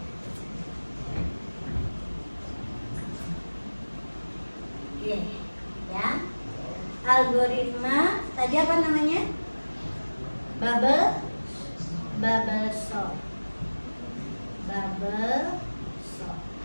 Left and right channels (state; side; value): inverted; both; correlation -1.00